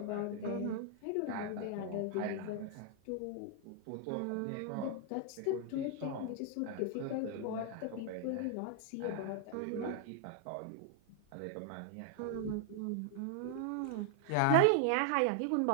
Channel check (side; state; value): both; different; correlation 0.00